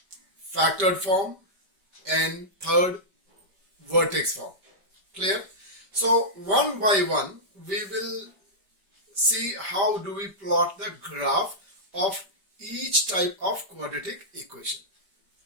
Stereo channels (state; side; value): late; left; 5.1 ms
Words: factored form, and third, vertex form. Clear? So one by one we will see how do we plot the graph of each type of quadratic equation.